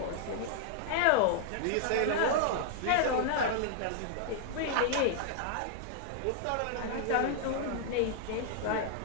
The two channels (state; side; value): different; both; correlation -0.01